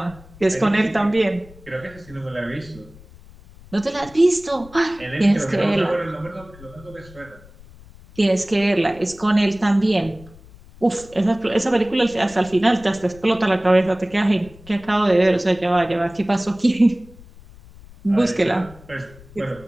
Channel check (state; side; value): noise; left; rumble, 22 dB below the sound